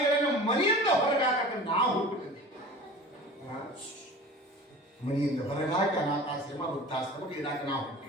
ಮನೆಯಿಂದ ಹೊರಗಾಕ ನಾವು ಹುಟ್ಟಿದ್ದೇವೆ. ಮನೆಯಿಂದ ಹೊರಗಾಕ ಅನಾಥಾಶ್ರಮ, ವೃದ್ಧಾಶ್ರಮ ಇಡಾಕ ನಾವು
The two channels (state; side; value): normal; both; correlation 0.38